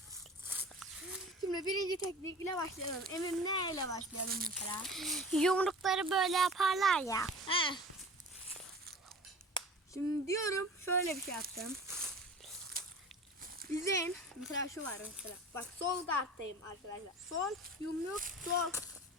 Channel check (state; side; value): normal; both; correlation 0.40